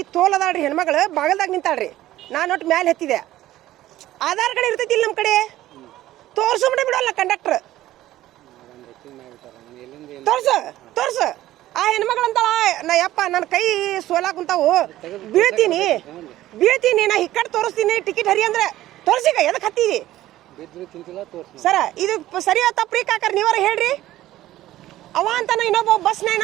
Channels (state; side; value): quieter; left; 14.8 dB